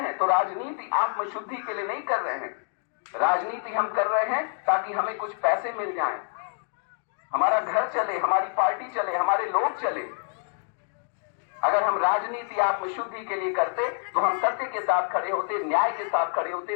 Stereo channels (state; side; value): silent; right; 60 dB below the other